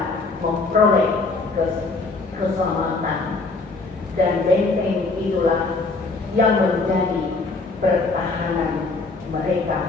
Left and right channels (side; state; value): right; quieter; 3.7 dB